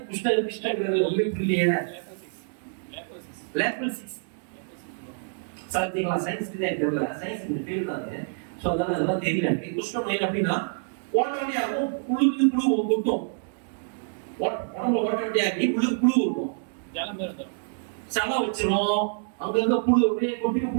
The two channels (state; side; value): silent; left; digital silence